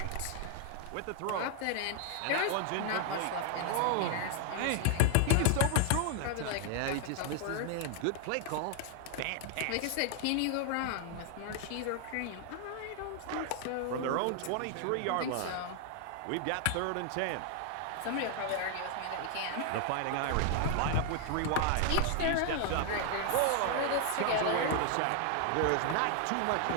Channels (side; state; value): both; different; correlation 0.00